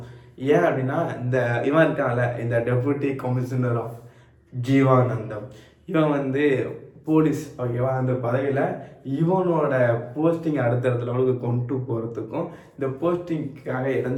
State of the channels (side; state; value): both; identical; correlation 1.00